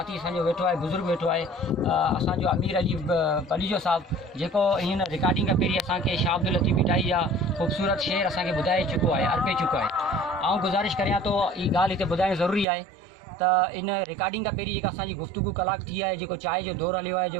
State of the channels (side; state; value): left; drops out; at 12.7 s